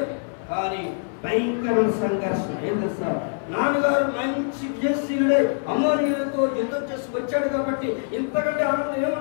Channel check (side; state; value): right; silent; 59 dB below the other